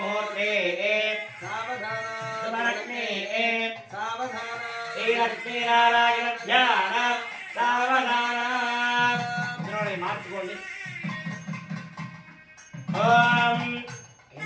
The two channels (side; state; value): both; identical; correlation 1.00